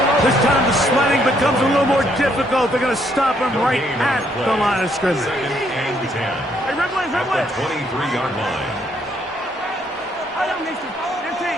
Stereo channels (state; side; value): normal; both; correlation 0.70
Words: This time the sledding becomes a little more difficult. They're going to stop him right at the line of scrimmage. Second and 10 at the 23-yard line.